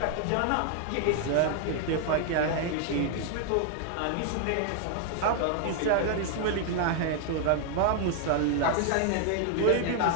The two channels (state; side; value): different; both; correlation 0.00